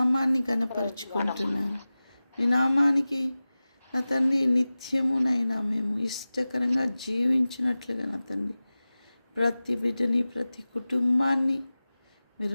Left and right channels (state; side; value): inverted; both; correlation -0.97